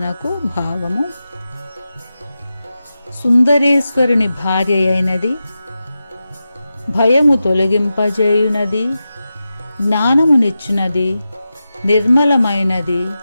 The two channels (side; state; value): both; inverted; correlation -0.92